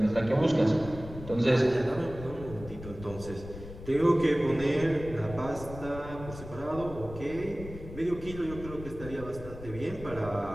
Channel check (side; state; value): left; noise; rumble, 13 dB below the sound